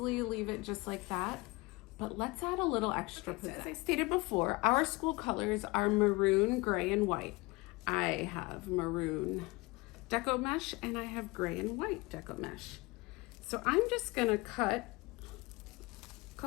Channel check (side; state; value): right; quieter; 24.0 dB